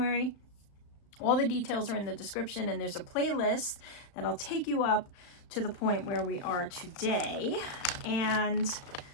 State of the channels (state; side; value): late; right; 35 ms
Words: All the details are in the description, and there's a playlist that'll take you up to the point where we are today. And